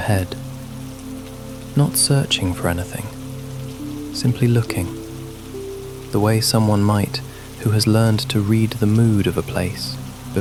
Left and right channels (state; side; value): identical; both; correlation 1.00